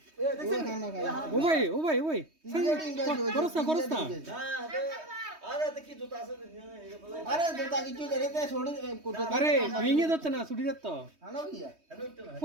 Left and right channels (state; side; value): late; left; 3.2 ms